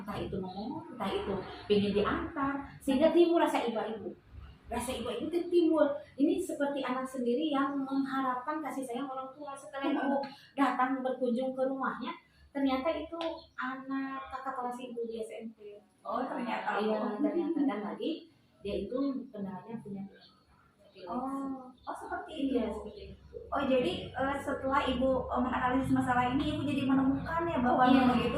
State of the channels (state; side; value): identical; both; correlation 1.00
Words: itu ngomong, entah itu pengen diantar, sehingga timbul rasa ibu. Rasa ibu itu timbul. Ini seperti anak sendiri yang mengharapkan kasih sayang orang tua. Setelah ibu datang berkunjung ke rumahnya, ternyata itu anak kakak kelas ibu di SMP. Oh, ternyata. Iya, ternyata. Dan lagi dia itu kendalanya punya. Oh, seperti itu. Iya, seperti itu. Oh, jadi setelah Ibu menganalisis masalah ini, Ibu jadi menemukan ya bahwa Nunung itu